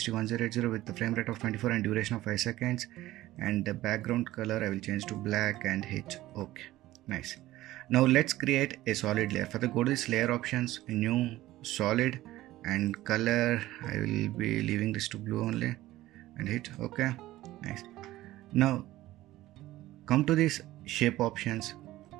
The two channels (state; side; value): quieter; left; 16.1 dB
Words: with the frame rate of 24 and duration of 5 seconds. And the background color I will change to black and hit OK. Nice. Now let's create a solid layer. Further go to this layer options, new solid, and color I will be leaving this to blue only and hit OK. Nice. Now come to this shape options.